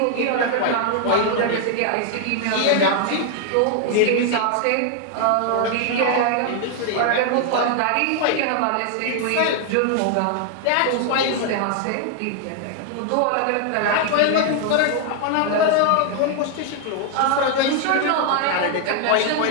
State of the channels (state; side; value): different; both; correlation 0.00